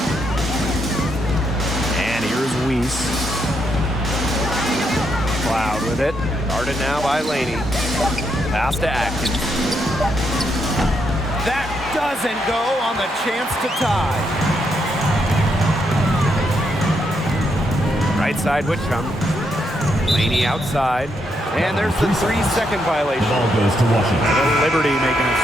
And here's Weiss. Cloud with it. Guarded now by Laney. Pass to Atkins. That doesn't go on the chance to tie. Right side Whitcomb. Laney outside. And there's the 3-second violation. Ball goes to Washington. The Liberty making a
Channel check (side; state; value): both; normal; correlation 0.78